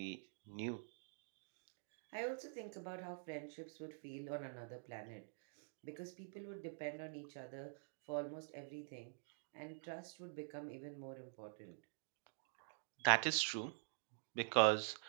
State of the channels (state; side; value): silent; left; digital silence